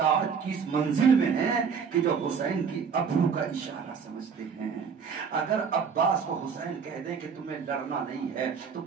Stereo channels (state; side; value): quieter; left; 6.3 dB